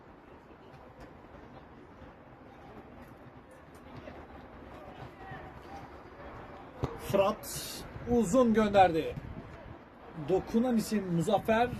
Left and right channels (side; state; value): both; identical; correlation 1.00